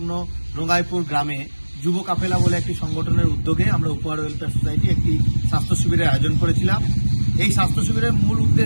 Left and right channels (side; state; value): both; inverted; correlation -1.00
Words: রঙ্গাইপুর গ্রামে যুব কাফেলা বলে একটি সংগঠনের উদ্যোগে আমরা উপহার ওয়েলফেয়ার সোসাইটি একটি স্বাস্থ্য শিবিরের আয়োজন করেছিলাম। এই স্বাস্থ্য শিবিরের মূল